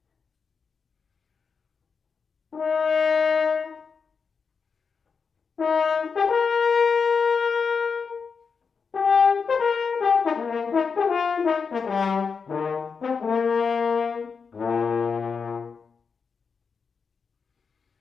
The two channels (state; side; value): quieter; right; 5.5 dB